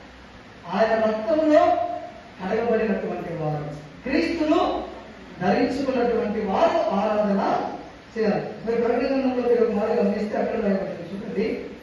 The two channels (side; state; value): both; identical; correlation 1.00